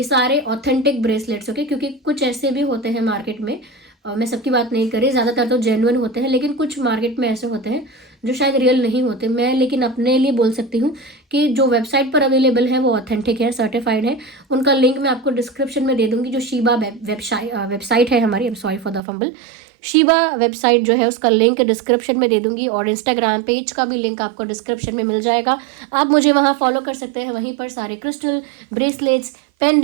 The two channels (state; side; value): drops out; left; at 19.0 s